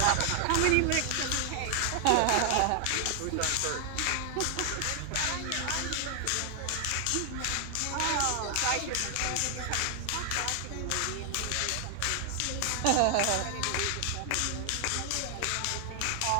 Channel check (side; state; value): both; different; correlation 0.00